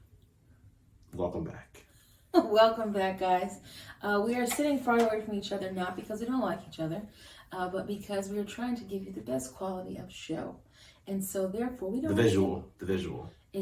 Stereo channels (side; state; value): both; identical; correlation 1.00